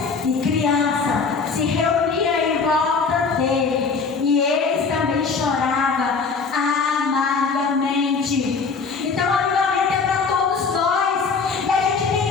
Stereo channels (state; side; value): quieter; right; 4.9 dB